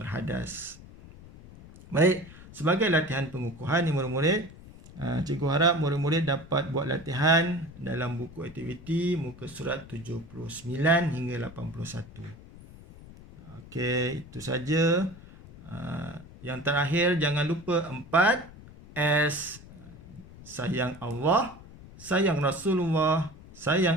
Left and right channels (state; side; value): noise; left; rumble, 19 dB below the sound